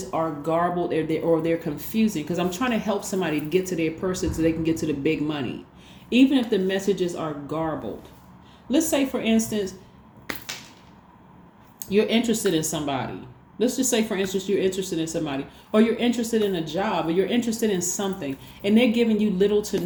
are garbled or they're confusing, because I'm trying to help somebody to get to their person so they can get to the big money. Even if the messages are garbled. Let's say, for instance, you're interested in somebody. Let's just say, for instance, you're interested in somebody, or you're interested in a job, or you're interested in something, and they're giving you little to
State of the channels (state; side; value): identical; both; correlation 1.00